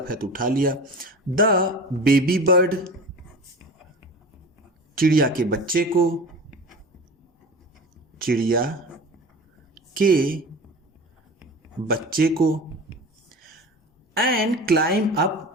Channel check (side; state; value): both; normal; correlation 0.34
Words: है तो उठा लिया। द बेबी बर्ड, चिड़िया के बच्चे को, चिड़िया के बच्चे को। And climb up